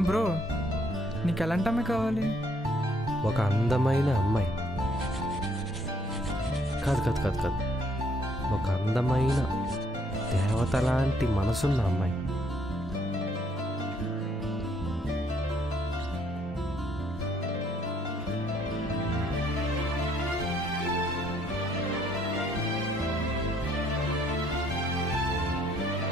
బ్రో, నీకు ఎలాంటి అమ్మాయి కావాలి? ఒక అందమైన అమ్మాయి. కాదు కాదు కాదు కాదు ఒక అందమైన దేవత లాంటి మనసున్న అమ్మాయి.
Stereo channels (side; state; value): both; normal; correlation 0.67